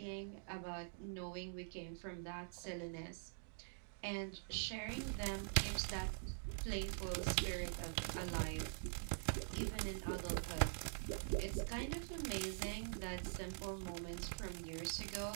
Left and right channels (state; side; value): silent; left; digital silence